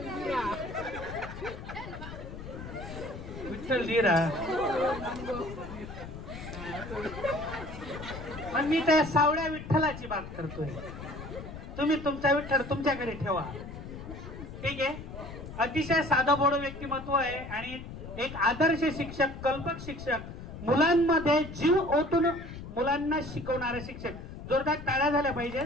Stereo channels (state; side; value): noise; left; rumble, 11 dB below the sound